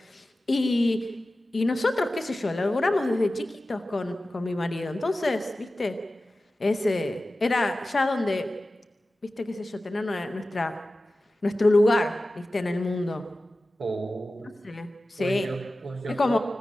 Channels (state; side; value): normal; both; correlation 0.95